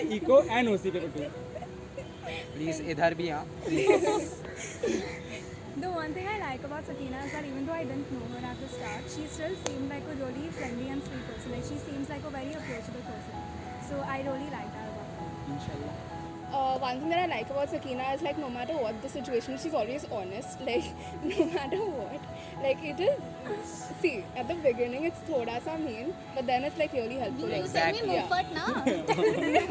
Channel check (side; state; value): both; identical; correlation 1.00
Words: eco and OC paper too. Please, इधर भी हाँ. The one thing I like about Sakina is that even though I didn't know her at the start, she still seemed like a really friendly and sweet person. Like she seems like a very approachable person. So I really like that about her. Inshallah. One thing that I like about Sakina is like no matter what the situation, she's always honest. Like no matter what, like it is. See, at the beginning it's thoda sa mean, but then it's like really helpful. You Like, send me yeah. Mufat now.